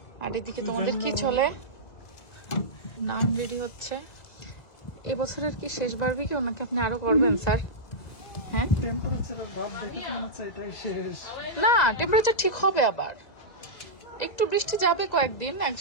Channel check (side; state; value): right; late; 2.0 ms